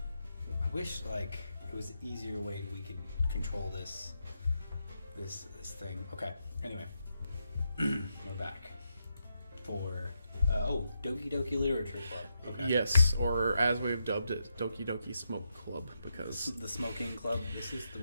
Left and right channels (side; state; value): both; inverted; correlation -0.84